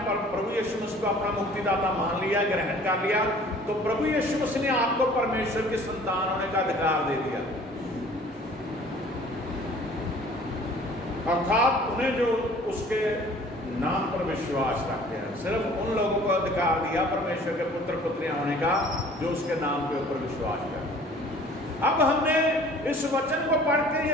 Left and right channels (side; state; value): both; normal; correlation 0.50